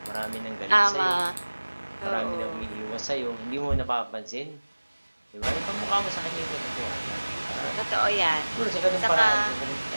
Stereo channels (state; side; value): inverted; both; correlation -1.00